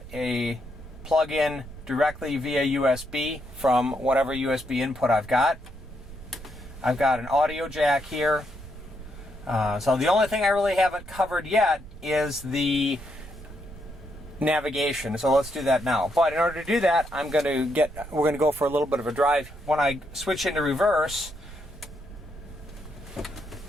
a plug-in directly via USB from whatever USB input I've got. I've got an audio jack here. So the only thing I really haven't covered yet is the navigation. So let's do that now. But in order to do that, we're going to go for a little bit of a drive. When I switch into reverse,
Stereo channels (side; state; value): right; noise; rumble, 15 dB below the sound